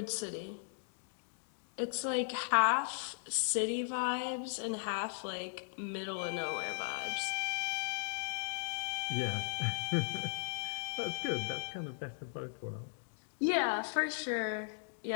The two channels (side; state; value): right; silent; digital silence